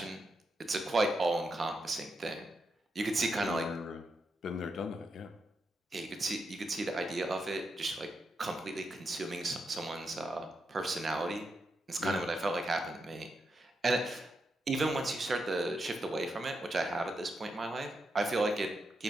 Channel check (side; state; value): both; normal; correlation 0.84